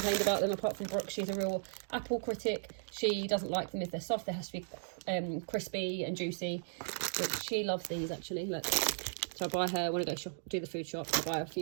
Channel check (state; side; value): silent; left; digital silence